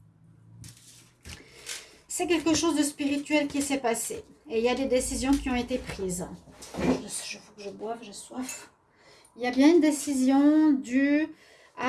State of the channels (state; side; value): identical; both; correlation 1.00